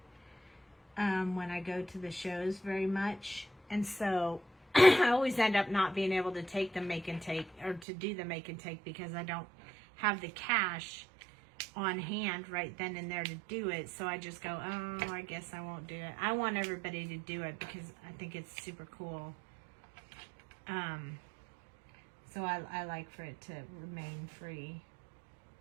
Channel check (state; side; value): drops out; left; at 7.9 s